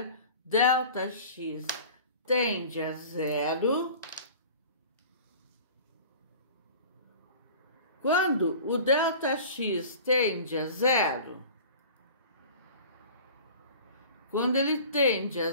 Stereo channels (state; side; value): inverted; both; correlation -0.41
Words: ΔX tende a zero. Quando o ΔX tende a zero, quando ele tende a